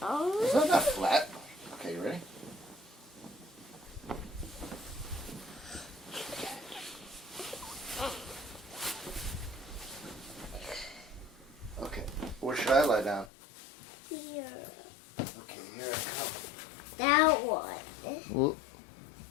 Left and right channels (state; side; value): drops out; right; at 13.3 s